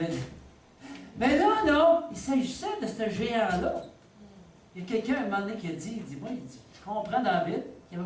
Mais là, non, il s'agissait de ce géant-là. Il y a quelqu'un, à un moment donné, qui a dit, je comprends David, qui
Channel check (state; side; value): identical; both; correlation 1.00